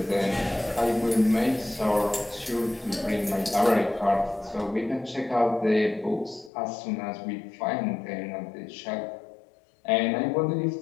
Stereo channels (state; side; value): drops out; right; at 6.5 s